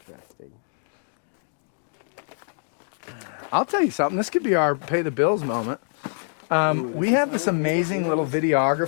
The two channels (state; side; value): silent; right; 62 dB below the other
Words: I'll tell you something. This could be our pay the bills moment. Ooh, we is have how this we pay the amazing little bills?